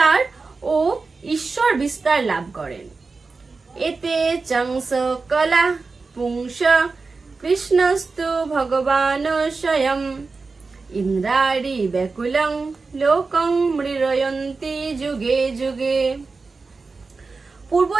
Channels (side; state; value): left; quieter; 4.2 dB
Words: ও ঈশ্বর বিস্তার লাভ করেন। এতে চংস কলা পুংস কৃষ্ণস্তু ভগবান স্বয়ং ইন্দ্রাণি ব্যাকুলং লোকং মৃরয়ন্তি যুগে যুগে।